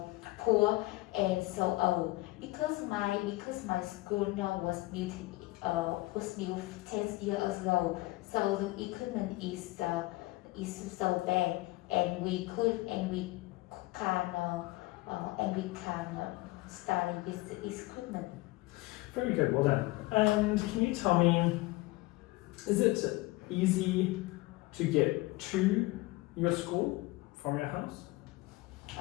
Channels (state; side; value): quieter; right; 20.7 dB